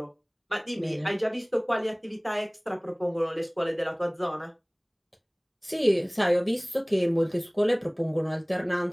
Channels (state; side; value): identical; both; correlation 1.00